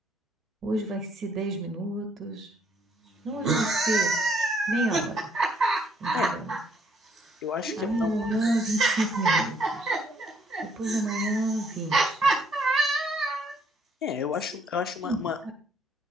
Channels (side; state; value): both; normal; correlation 0.67